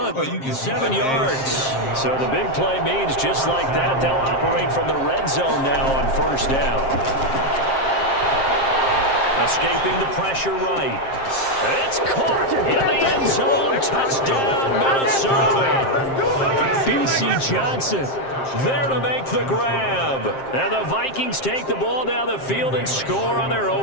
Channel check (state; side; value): late; right; 7.5 ms